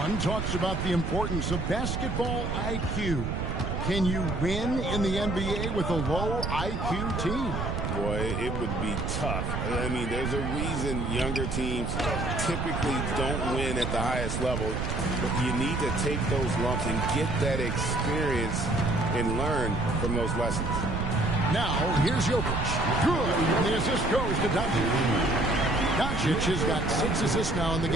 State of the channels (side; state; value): right; noise; rumble, 2 dB below the sound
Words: talks about the importance of basketball IQ. Can you win in the NBA with a low IQ team? Boy, it would be tough. I mean, there's a reason younger teams typically don't win at the highest level. But you need to take those lumps and get that experience and learn from those lessons. Now, here's Jokic. Good. And the assist goes to Doncic. Doncic has got 6 assists now in the